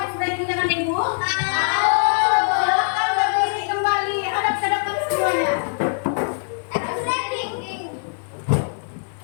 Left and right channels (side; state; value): right; silent; digital silence